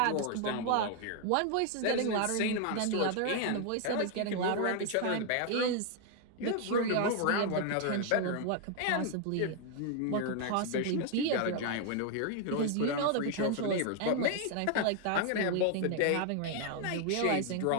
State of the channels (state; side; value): different; both; correlation 0.00